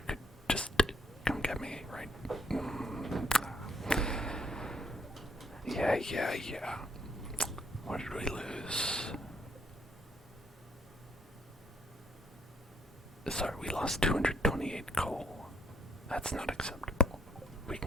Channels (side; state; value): both; normal; correlation 0.69